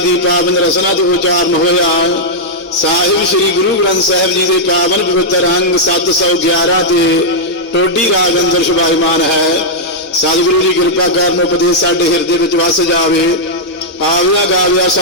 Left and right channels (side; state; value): both; normal; correlation -0.05